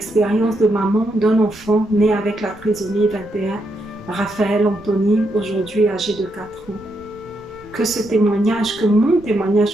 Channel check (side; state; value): right; noise; rumble, 25 dB below the sound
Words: de maman d'un enfant né avec la trisomie 21, Raphaël Anthony, aujourd'hui âgé de 4 ans. Que ce témoignage, que mon